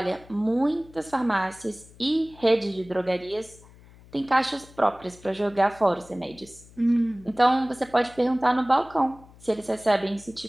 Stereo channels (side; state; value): left; noise; hum, 23 dB below the sound